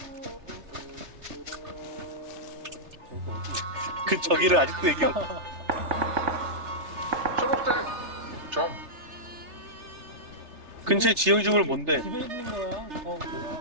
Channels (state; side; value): late; left; 3.3 ms